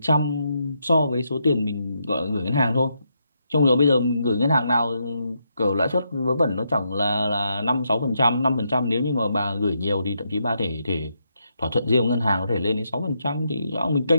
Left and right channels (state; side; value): inverted; both; correlation -0.80